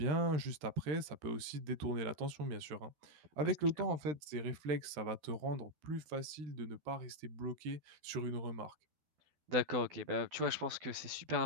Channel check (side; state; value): left; late; 13 ms